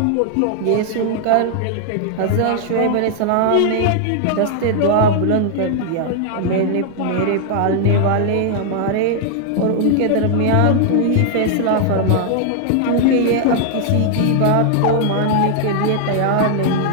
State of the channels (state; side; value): different; both; correlation 0.00